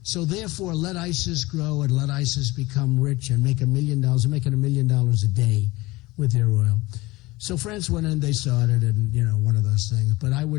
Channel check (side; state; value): right; quieter; 20.6 dB